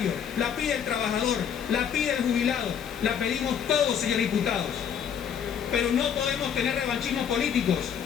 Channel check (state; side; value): quieter; right; 8.1 dB